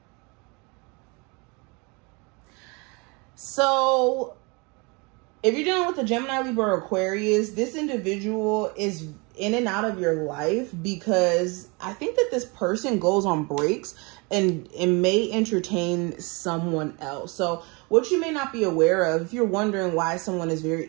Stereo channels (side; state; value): left; quieter; 29.1 dB